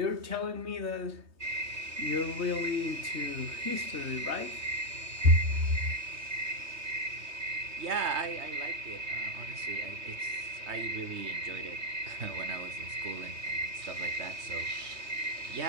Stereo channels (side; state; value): left; late; 3.2 ms